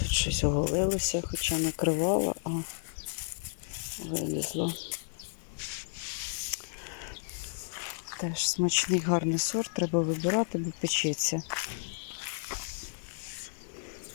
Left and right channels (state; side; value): silent; right; digital silence